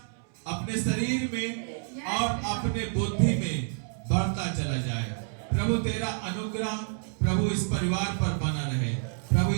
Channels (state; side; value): silent; left; 59 dB below the other